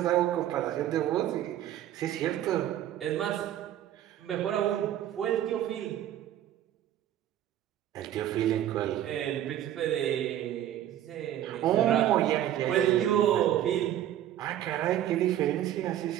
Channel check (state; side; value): quieter; left; 11.8 dB